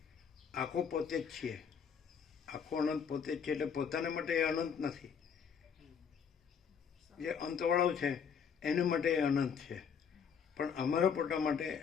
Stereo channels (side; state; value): right; quieter; 6.9 dB